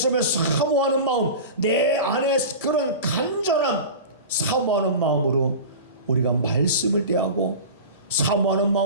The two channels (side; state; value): both; inverted; correlation -0.32